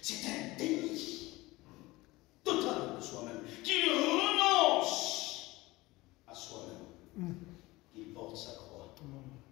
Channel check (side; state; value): right; quieter; 20.4 dB